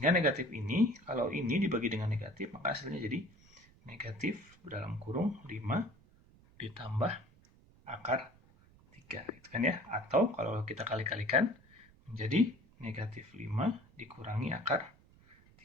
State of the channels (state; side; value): noise; right; rumble, 27 dB below the sound